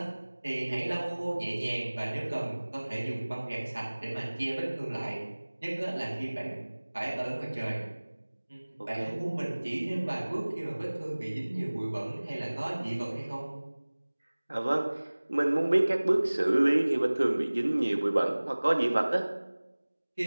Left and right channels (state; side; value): inverted; both; correlation -1.00